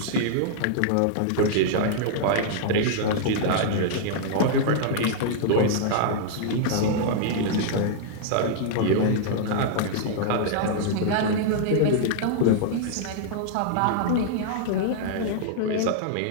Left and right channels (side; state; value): both; different; correlation -0.01